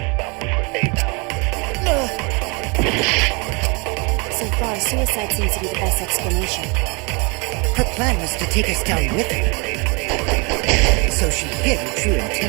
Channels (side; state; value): left; quieter; 30.5 dB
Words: So far, suicide seems to be the best explanation. Her plan was to take us down with her, so she hid her true